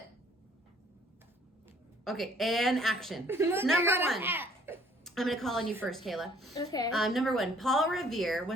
Okay, and action. Number 1. I'm going to call on you first, Kayla. Okay. Number 1, Paul Revere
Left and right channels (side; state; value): both; normal; correlation 0.59